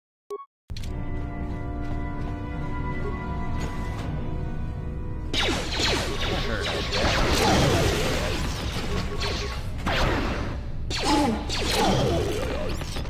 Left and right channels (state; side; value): identical; both; correlation 1.00